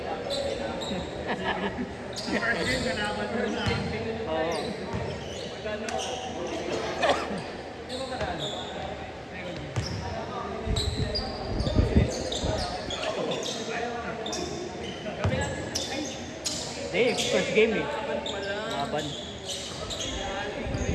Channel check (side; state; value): both; identical; correlation 1.00